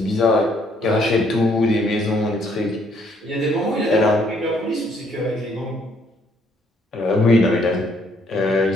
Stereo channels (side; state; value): both; normal; correlation 0.67